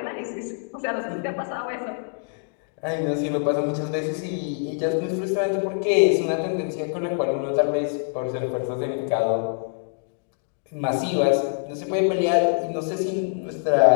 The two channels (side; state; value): right; silent; 61 dB below the other